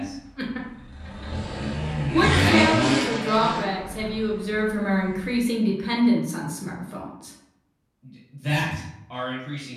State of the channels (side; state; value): both; identical; correlation 1.00